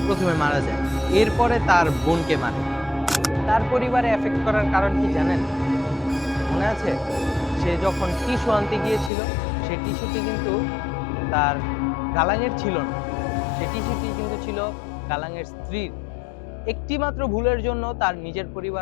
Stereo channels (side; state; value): right; drops out; at 9.1 s